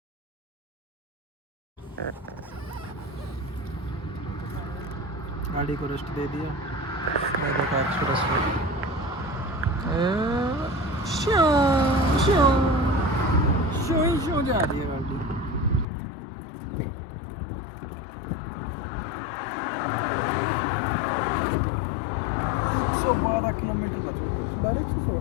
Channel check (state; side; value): drops out; right; at 15.9 s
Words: गाड़ी को रेस्ट दे दिया। एक्सप्रेस शो जा रही है गाड़ी। 112 किलोमीटर बच गए।